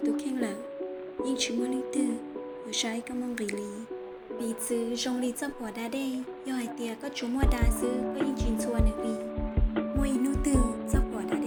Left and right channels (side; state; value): both; identical; correlation 1.00